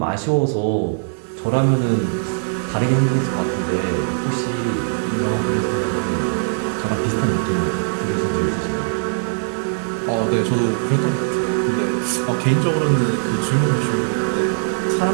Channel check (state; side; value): silent; left; digital silence